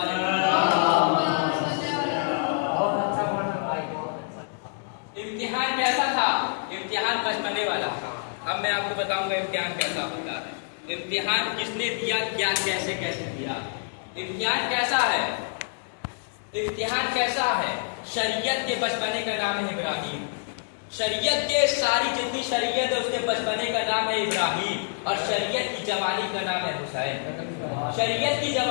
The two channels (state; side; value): silent; right; digital silence